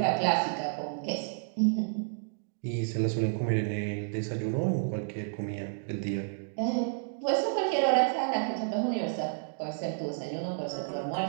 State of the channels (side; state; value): left; silent; digital silence